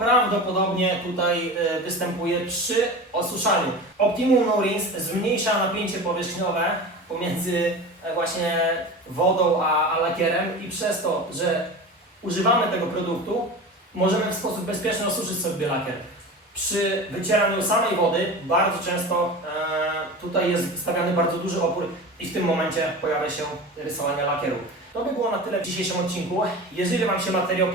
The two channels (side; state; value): both; normal; correlation 0.31